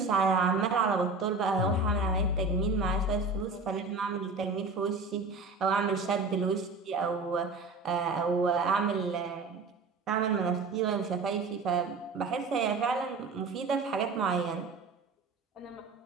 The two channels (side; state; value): left; quieter; 3.8 dB